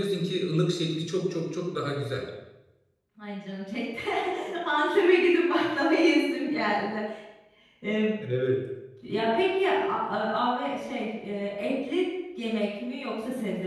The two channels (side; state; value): both; identical; correlation 1.00